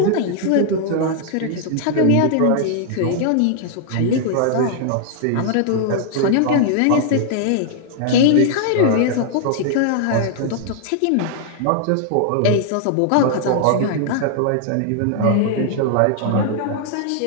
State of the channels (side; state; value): both; different; correlation 0.00